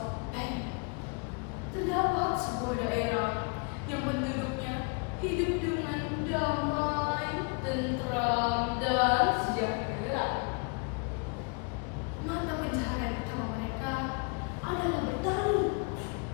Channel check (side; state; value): right; quieter; 34.8 dB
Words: terdapat sebuah daerah yang penduduknya hidup dengan damai, tentram, dan sejahtera. Mata pencaharian utama mereka adalah bertani.